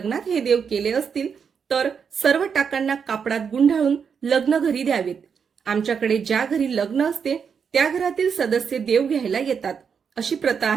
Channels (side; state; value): left; quieter; 6.6 dB